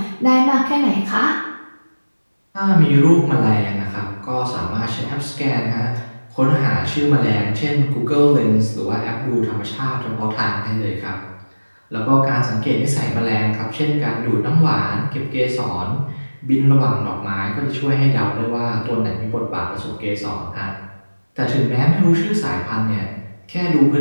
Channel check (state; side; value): inverted; both; correlation -1.00